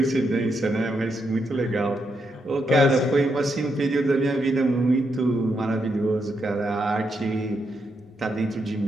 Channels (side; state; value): both; normal; correlation 0.81